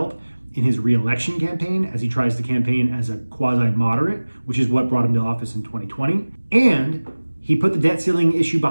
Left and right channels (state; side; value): inverted; both; correlation -1.00